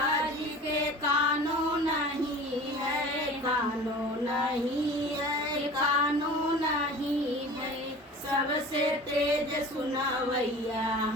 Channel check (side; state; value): both; normal; correlation 0.40